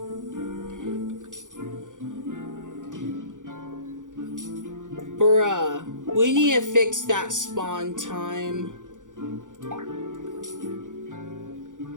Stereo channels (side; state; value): left; late; 0.87 ms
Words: Bruh. We need to fix that spawn time.